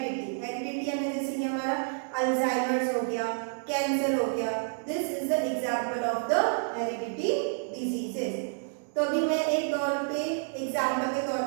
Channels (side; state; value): left; silent; digital silence